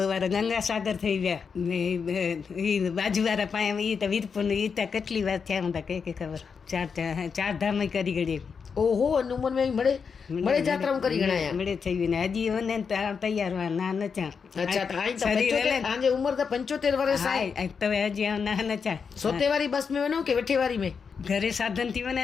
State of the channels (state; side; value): quieter; right; 5.9 dB